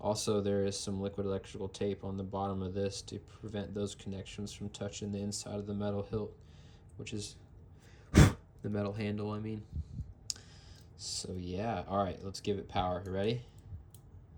there is some liquid electrical tape on the bottom of this to prevent those connections from touching the inside of the metal hilt, which is the metal handle, I mean. So yeah, all right, let's give it power. You ready?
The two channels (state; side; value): identical; both; correlation 1.00